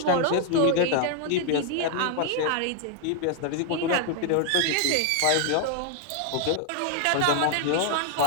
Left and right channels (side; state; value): both; different; correlation 0.00